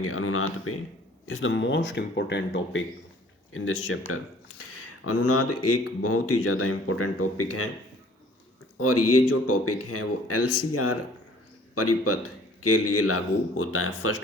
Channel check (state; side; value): normal; both; correlation 0.54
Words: अनुनाद पे। Is the most important topic in this chapter. अनुनाद एक बहुत ही ज़्यादा इम्पोर्टेंट टॉपिक है और ये जो टॉपिक है वो LCR परिपथ के लिए लागू होता है,